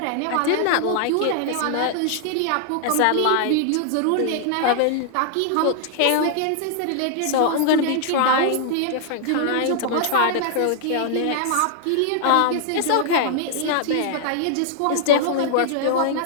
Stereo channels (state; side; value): different; both; correlation -0.01